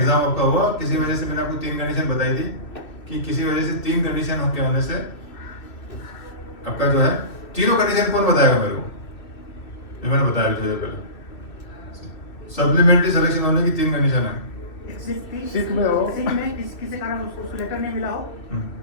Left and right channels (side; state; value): right; late; 2.8 ms